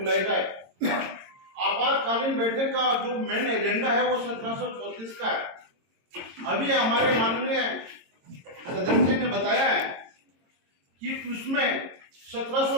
जाए। आपातकालीन बैठक का जो मेन एजेंडा है वो 1734 का है। अभी हमारे माननीय सदस्य ने बताया है कि उसमें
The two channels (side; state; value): left; late; 22 ms